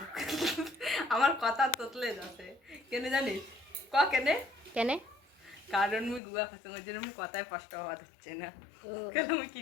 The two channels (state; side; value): drops out; right; at 6.2 s